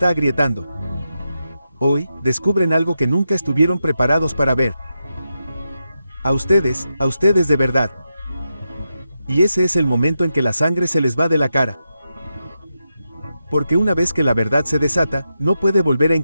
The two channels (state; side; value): inverted; both; correlation -0.88